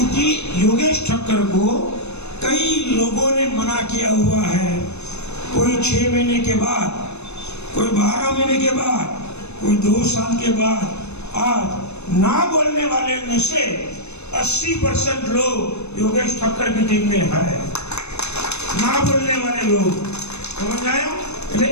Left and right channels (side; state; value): right; late; 0.81 ms